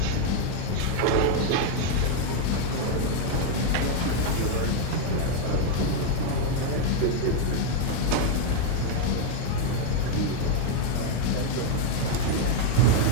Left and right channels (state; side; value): different; both; correlation 0.01